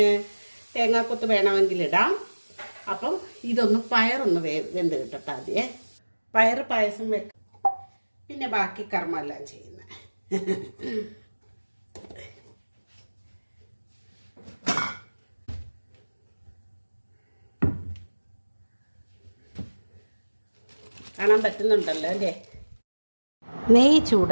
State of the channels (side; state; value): both; inverted; correlation -1.00